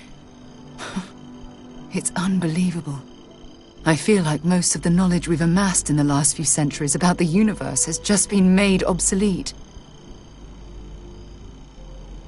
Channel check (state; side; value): identical; both; correlation 1.00